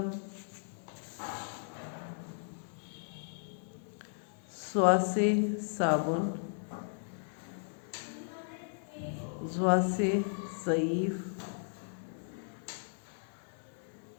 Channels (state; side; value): silent; right; 54 dB below the other